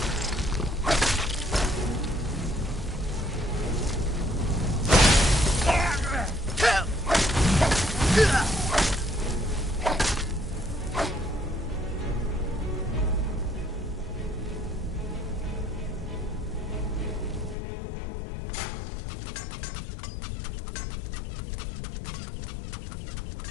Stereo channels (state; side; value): drops out; right; at 17.6 s